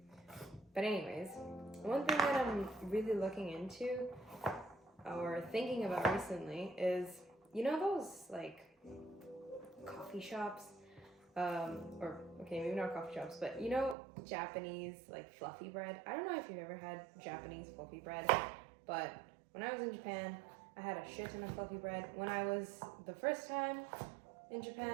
But anyways, one thing that I'm really looking into or thinking about recently is, those like coffee shops, maybe not coffee shops, but Japanese like fluffy bread. I don't know if you've ever had Japanese fluffy bread, but when I was in Japan, I had a shit ton of fluffy bread. When I was the first time in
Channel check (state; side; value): drops out; left; at 14.0 s